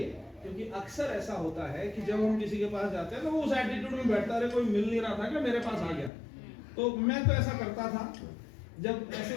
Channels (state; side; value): drops out; right; at 6.1 s